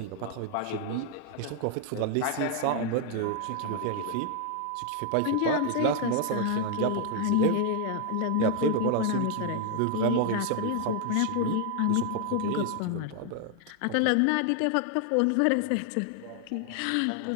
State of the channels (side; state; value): both; different; correlation 0.00